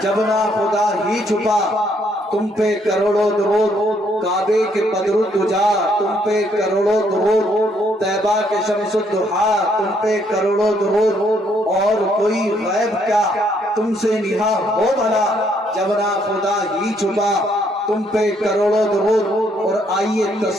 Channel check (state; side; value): normal; both; correlation 0.70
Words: جب نہ خدا ہی چھپا تم پہ کروڑوں درود، کعبے کے بدر الدجا تم پہ کروڑوں درود، طیبہ کے شمس الضحیٰ تم پہ کروڑوں درود، اور کوئی غیب کیا تم سے نہاں ہو بھلا، جب نہ خدا ہی چھپا تم پہ کروڑوں درود۔ اور آئیے